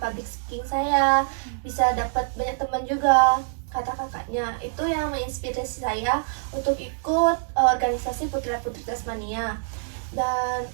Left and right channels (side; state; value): left; silent; 62 dB below the other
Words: public speaking saya, bisa dapat banyak teman juga, kata kakaknya. Itu yang menginspirasi saya untuk ikut organisasi Putra-Putri Tasmania. Dan